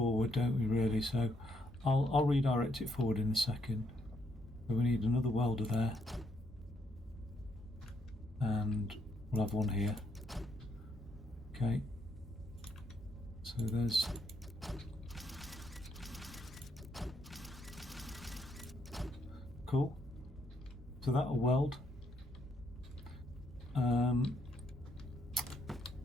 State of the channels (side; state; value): both; normal; correlation 0.74